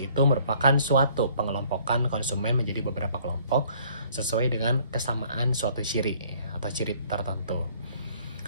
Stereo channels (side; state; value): both; inverted; correlation -0.58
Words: itu merupakan suatu pengelompokan konsumen menjadi beberapa kelompok sesuai dengan kesamaan suatu ciri atau ciri tertentu.